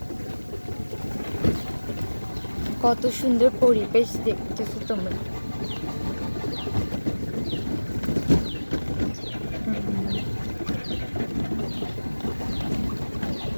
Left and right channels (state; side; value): inverted; both; correlation -1.00